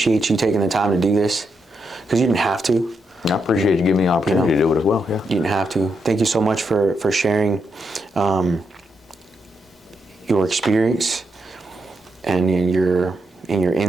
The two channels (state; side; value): normal; both; correlation 0.82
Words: you taking the time to do this, because you didn't have to. I appreciate you giving me the opportunity to do it as well. Yeah. You didn't have to. Thank you so much for sharing your experience and your